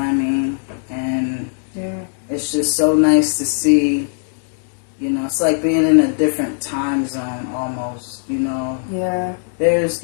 I mean? And Yeah. it's just so nice to see, you know, it's like being in a different time zone almost, you know. Yeah. There's,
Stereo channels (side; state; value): right; silent; digital silence